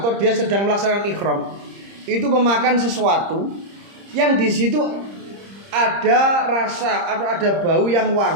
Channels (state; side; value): late; left; 30 ms